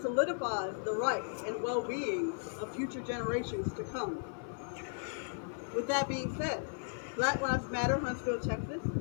solidifies the rights and well-being of future generations to come. With that being said, Black Lives Matter Huntsville, Texas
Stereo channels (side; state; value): right; silent; 54 dB below the other